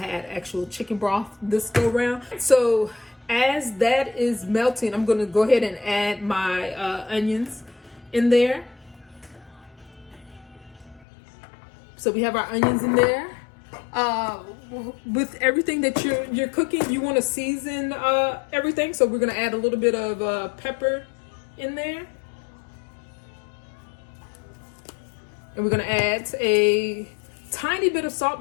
actual chicken broth this go round. So as that is melting, I'm going to go ahead and add my onions in there. So we have our onions in there. With everything that you're cooking, you want to season everything. So we're going to add a little bit of pepper in there. And we're going to add a tiny bit of salt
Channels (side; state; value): right; drops out; at 11.1 s